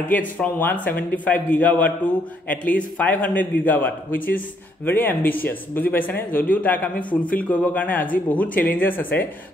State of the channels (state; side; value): normal; both; correlation 0.71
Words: from 175 gigawatt to at least 500 gigawatt which is very ambitious বুজি পাইছানে যদিও তাক আমি ফুলফিল কৰিব কাৰণে আজি বহুত চ্যালেঞ্জেস আছে